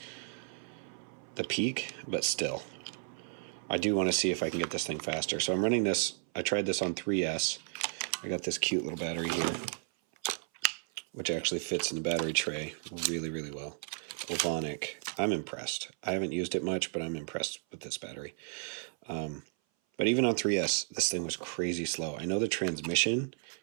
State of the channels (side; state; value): left; silent; 55 dB below the other